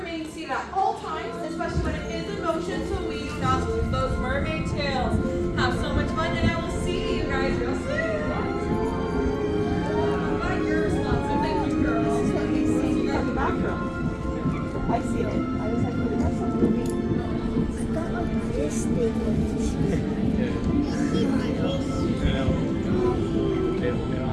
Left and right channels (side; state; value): both; identical; correlation 1.00